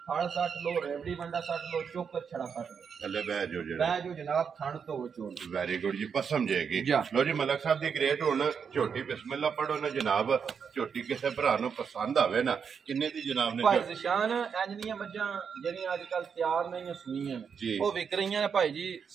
ਫਾਲ ਸੱਟ ਲੋ ਰੇਵੜੀ ਵੰਡਾ ਸੱਟ ਲੋ ਚੋਕਰ ਛੜਾ ਸੱਟ ਲੋ ਥੱਲੇ ਬਹਿ ਜੋ ਜਨਾਬ ਥਣ ਤੋਂ ਚੋਲ ਵੈਰੀ ਗੁੱਡ ਜੀ ਬਸ ਸਮਝੇਗੀ ਲੋ ਜੀ ਮਲਕ ਸਾਹਿਬ ਦੀ ਗ੍ਰੇਟ ਹੁਣ ਝੋਟੀ ਬਿਸਮਿਲ੍ਲਾ ਪੜੋ ਨਾ ਜਨਾਬ ਝੋਟੀ ਕਿਸੇ ਭਰਾ ਨੂੰ ਪਸੰਦ ਆਵੇ ਨਾ ਕਿੰਨੇ ਦੀ ਜਨਾਬ ਨੇ ਭਾਈ ਜ਼ਿਸ਼ਾਨ ਇੰਜ ਦੀਆਂ ਮੱਝਾਂ ਜਿਹੜੀਆਂ ਅੱਜ ਕੱਲ ਤਿਆਰ ਨਹੀਂ ਸੂਈਆਂ ਉਹ ਵਿਕ ਰਹੀਆਂ ਨੇ ਭਾਈ ਜੀ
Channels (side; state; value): left; quieter; 6.6 dB